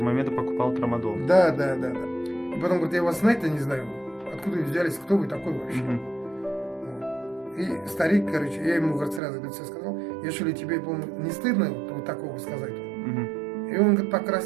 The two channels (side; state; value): left; drops out; at 9.2 s